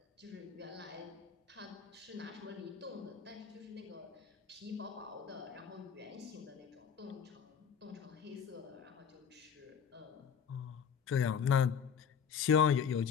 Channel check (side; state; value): right; quieter; 7.1 dB